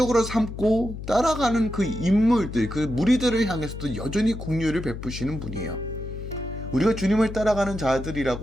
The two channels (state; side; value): noise; left; hum, 9 dB below the sound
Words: 삼고 따라가는 그 인물들, 그 무리들을 향해서도 여전히 긍휼을 베푸시는 분이에요. 우리가 주님을 따라가는